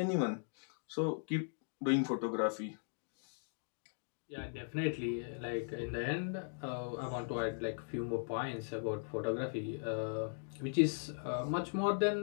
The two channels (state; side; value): silent; right; digital silence